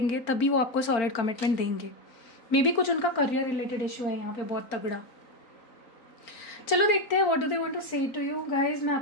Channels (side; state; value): right; late; 4.4 ms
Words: तभी वो आपको सॉलिड कमिटमेंट देंगे। मे बी कुछ उनका करियर रिलेटेड इशू है यहाँ पे बहुत तगड़ा। चलो देखते हैं what do they want to say to you guys. मैं